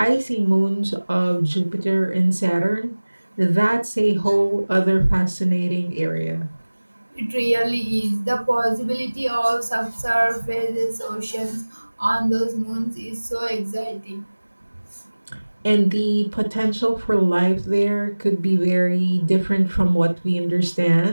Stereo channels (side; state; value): both; inverted; correlation -1.00